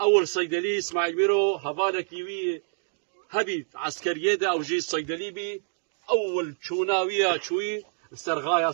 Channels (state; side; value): silent; left; digital silence